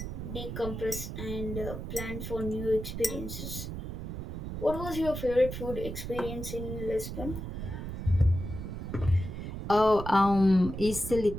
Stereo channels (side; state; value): right; noise; rumble, 6 dB below the sound